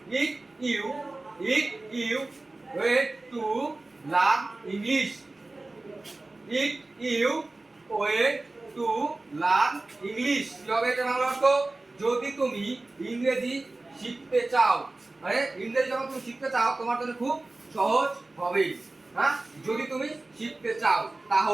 if you wait to learn English, if you wait to learn English, কি হবে এটা বাংলা অর্থ? যদি তুমি ইংরেজি শিখতে চাও, মানে ইংরেজি যখন তুমি শিখতে চাও তোমার জন্য খুব সহজ হবে। হ্যাঁ, যদি তুমি শিখতে চাও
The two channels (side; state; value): left; quieter; 3.0 dB